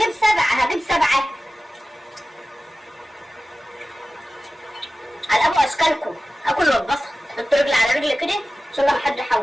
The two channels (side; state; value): both; normal; correlation 0.96